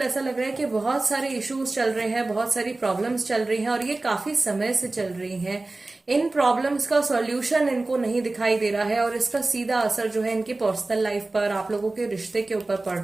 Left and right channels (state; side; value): quieter; left; 3.1 dB